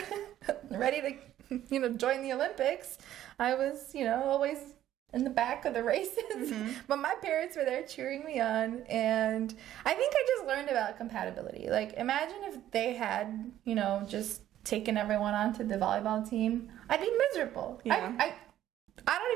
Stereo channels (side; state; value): left; quieter; 12.4 dB